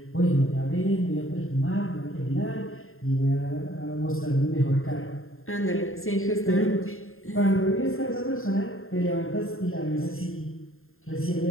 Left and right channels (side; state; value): right; late; 0.61 ms